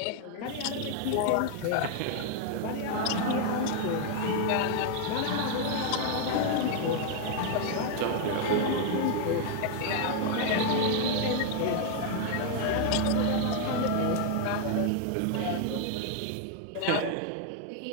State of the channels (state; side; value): different; both; correlation 0.00